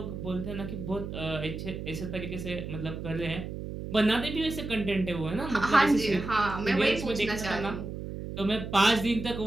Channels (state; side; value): noise; right; hum, 7 dB below the sound